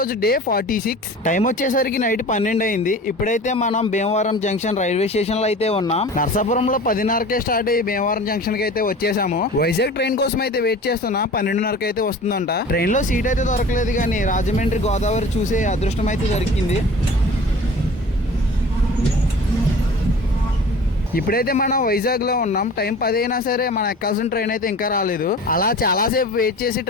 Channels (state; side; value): normal; both; correlation 0.41